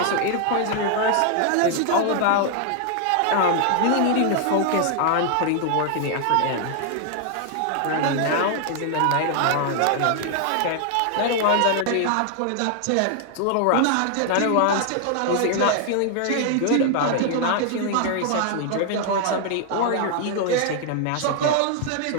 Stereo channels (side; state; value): both; different; correlation 0.00